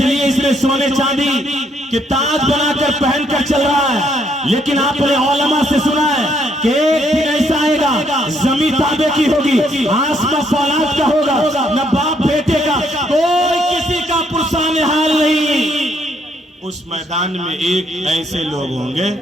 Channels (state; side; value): normal; both; correlation 0.70